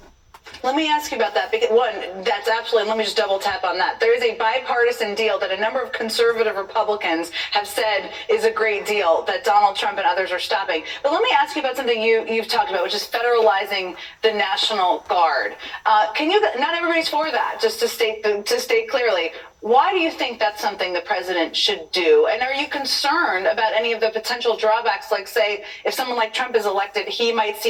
Let me ask you about that, because one, that's absolutely, let me just double tap on that. There is a bipartisan deal that a number of conservative Republicans have said is a great deal that Donald Trump and others are stopping. But let me ask you about something you've talked about, which is federalizing the National Guard. Not everybody's for that, just to state clearly. Why do you think that's something the president should do? And are you concerned about any of the potential drawbacks, like, say, if someone like Trump is elected, he might see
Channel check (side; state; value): both; identical; correlation 1.00